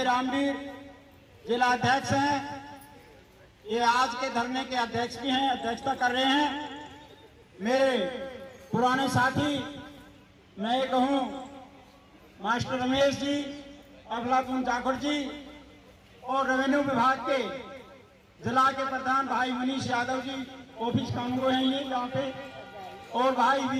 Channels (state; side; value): identical; both; correlation 1.00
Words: रामवीर जिला अध्यक्ष हैं, ये आज के धरने के अध्यक्ष भी हैं, अध्यक्षता कर रहे हैं। मेरे पुराने साथी मैं ये कहूँ मास्टर रमेश जी, अफलातून जाखड़ जी और रेवेन्यू विभाग के जिला के प्रधान भाई मनीष यादव जी ऑफिस कानून हैं ये यहाँ पे, और भाई